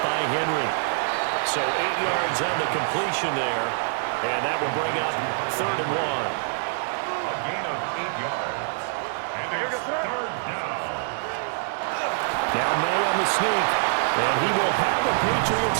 by Henry. So 8 yards on the completion there. And that will bring up 3rd and 1. A gain of 8 yards. And it's 3rd down. Now May on the sneak. And he will have a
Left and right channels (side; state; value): left; silent; digital silence